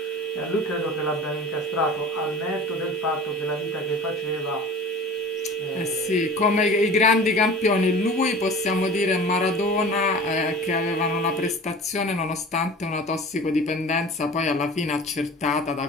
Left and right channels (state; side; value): normal; both; correlation 0.39